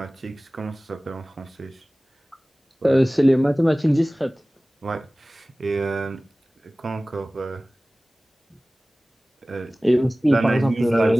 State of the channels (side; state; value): both; normal; correlation 0.98